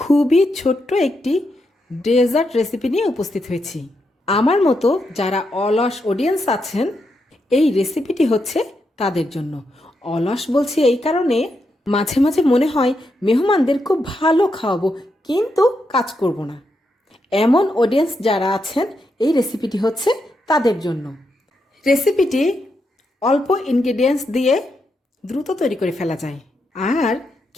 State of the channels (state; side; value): normal; both; correlation 0.83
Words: ছোট্ট একটি ডেজার্ট রেসিপি নিয়ে উপস্থিত হয়েছি। আমার মতো যারা অলস অডিয়েন্স আছেন, এই রেসিপিটি হচ্ছে তাদের জন্য। অলস বলছি এই কারণে, মাঝে মাঝে মনে হয় মেহমানদের খুব ভালো খাওয়াবো, কিন্তু কাজ করব না। এমন অডিয়েন্স যারা আছেন, এই রেসিপিটি হচ্ছে তাদের জন্য। রেসিপিটি অল্প ইনগ্রেডিয়েন্টস দিয়ে দ্রুত তৈরি করে ফেলা যায়, আর